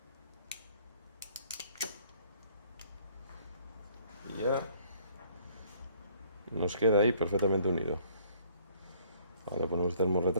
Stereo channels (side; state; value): both; inverted; correlation -0.61